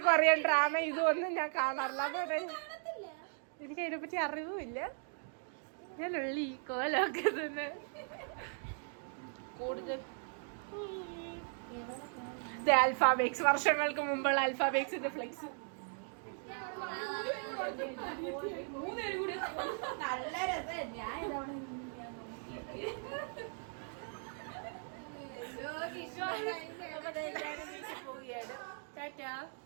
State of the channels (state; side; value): silent; left; 52 dB below the other